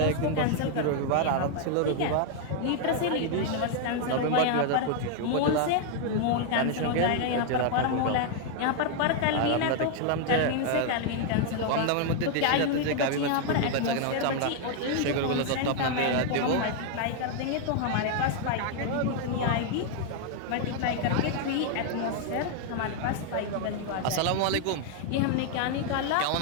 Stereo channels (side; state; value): both; different; correlation 0.00